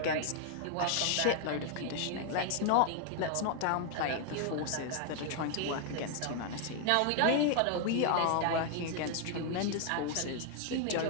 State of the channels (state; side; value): different; both; correlation 0.00